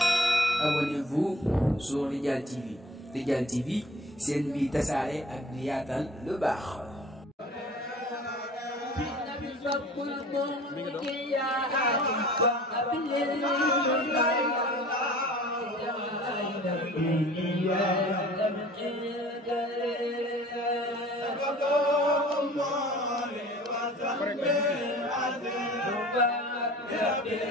Abonnez-vous sur Radial TV. Radial TV, c'est une vie tasaare ak di yaatal lu baax.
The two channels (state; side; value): normal; both; correlation 0.46